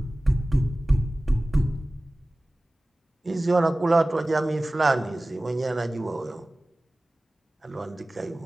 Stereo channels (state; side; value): normal; both; correlation 0.97